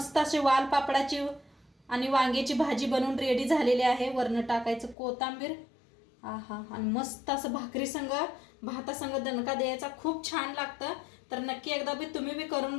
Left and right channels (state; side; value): drops out; right; at 5.0 s